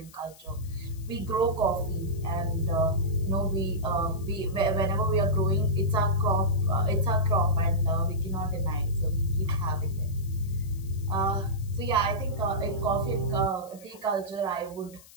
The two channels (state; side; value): noise; left; hiss, 23 dB below the sound